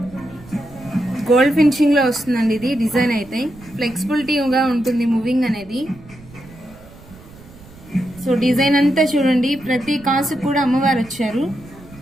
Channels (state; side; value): noise; right; rumble, 21 dB below the sound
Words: గోల్డ్ ఫినిషింగ్ లో వస్తుందండి. ఇది డిజైన్ అయితే ఫ్లెక్సిబిలిటీగా ఉంటుంది మూవింగ్ అనేది. సో డిజైన్ అంతా చూడండి, ప్రతి కాసు కూడా అమ్మవారు వచ్చారు.